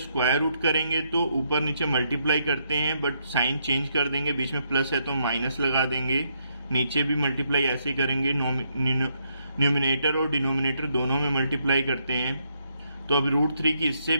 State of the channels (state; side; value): inverted; both; correlation -0.76